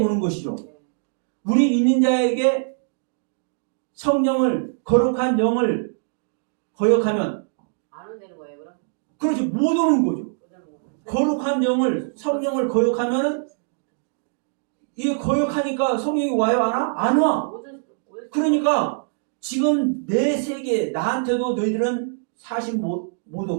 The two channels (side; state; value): left; silent; digital silence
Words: 오는 것이죠. 예. 우리 믿는 자에게 성령을, 거룩한 영을 거역하면, 안 오는 거예요, 그럼? 그렇죠. 못 오는 거죠. 못 오는 거예요. 거룩한 영을, 성령을 거역하면은, 이게 거역하니까 성령이 와요, 안 와? 안 와. 그러니까, 지금 내 세계, 나한테도 너희들은 사실 못